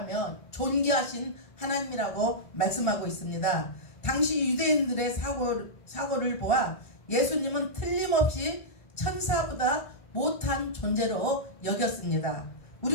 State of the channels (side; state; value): right; late; 1.5 ms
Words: 존귀하신 하나님이라고 말씀하고 있습니다. 당시 유대인들의 사고를 보아 예수님은 틀림없이 천사보다 못한 존재로 여겼습니다.